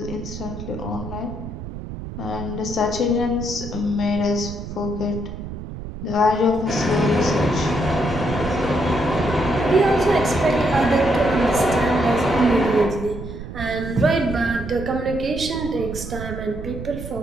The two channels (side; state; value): right; noise; rumble, 9 dB below the sound